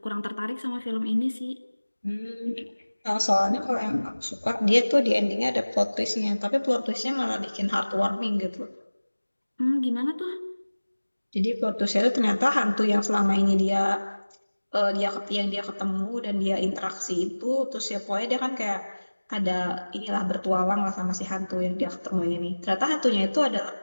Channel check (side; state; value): both; inverted; correlation -1.00